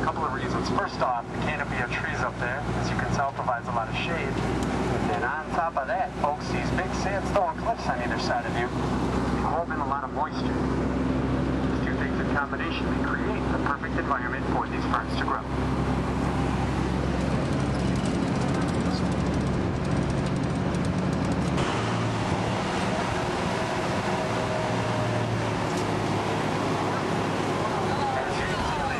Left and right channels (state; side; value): identical; both; correlation 1.00